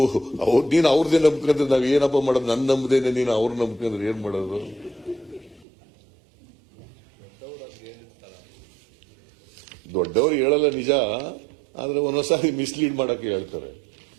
ನೀನು ಅವ್ರದೇ ನಂಬ್ಕೊಂಡ್ರೆ ನಾವ್ ಏನಪ್ಪ ಮಾಡೋದು? ನನ್ನ ನಂಬದೇನೆ ನೀನು ಅವ್ರ ನಂಬ್ಕೊಂಡ್ರೆ ಏನ್ ಮಾಡೋದು? ದೊಡ್ಡವರು ಹೇಳಲ್ಲ ನಿಜ, ಆದ್ರೆ ಒಂದೊಂದ್ಸಾರಿ ಮಿಸ್ಲೀಡ್ ಮಾಡಕ್ಕೆ ಹೇಳ್ತಾರೆ.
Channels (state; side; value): drops out; left; at 5.7 s